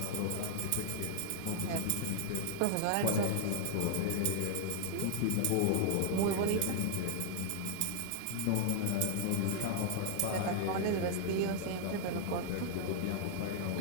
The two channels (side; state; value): both; different; correlation 0.00